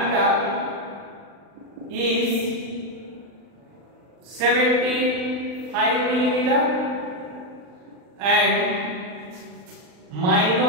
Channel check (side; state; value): left; late; 39 ms